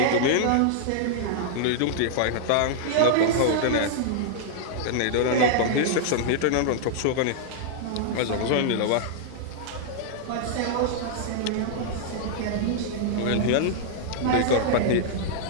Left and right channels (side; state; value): both; different; correlation -0.01